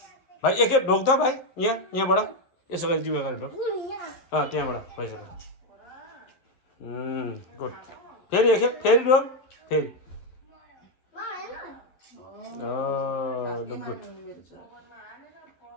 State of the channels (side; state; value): right; late; 11 ms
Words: भाइ एकखेप ढोक त भाइ यहाँबाट यसो गरी जिउमा गरेर ढोक त्यहाँबाट भइसक्यो गुड फेरि एकखेप फेरि ढोक फेरि लु गुड